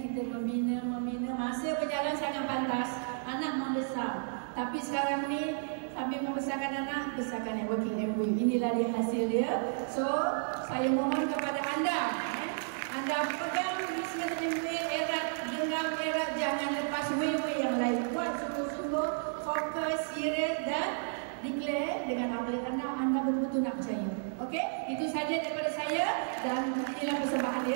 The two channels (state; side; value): silent; left; digital silence